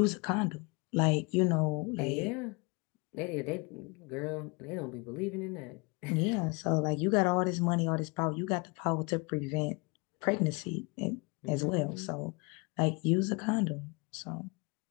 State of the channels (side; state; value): right; quieter; 29.4 dB